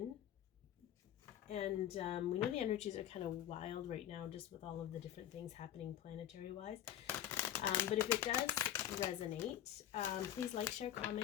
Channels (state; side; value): quieter; right; 11.3 dB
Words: And we know the energies are kind of wild right now, just with all of the different things happening planetary-wise. But if it does resonate, please like, share,